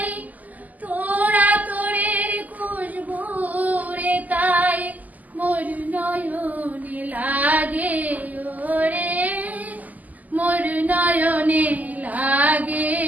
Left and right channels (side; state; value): left; late; 0.080 ms